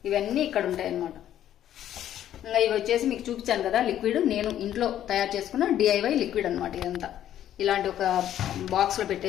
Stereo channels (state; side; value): quieter; right; 11.4 dB